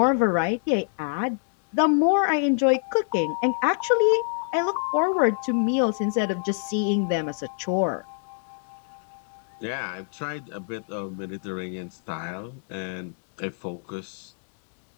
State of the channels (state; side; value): silent; right; digital silence